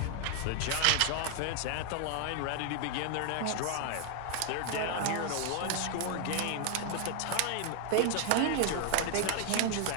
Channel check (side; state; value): both; different; correlation 0.00